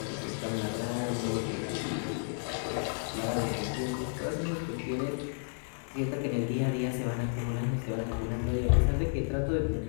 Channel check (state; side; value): silent; right; digital silence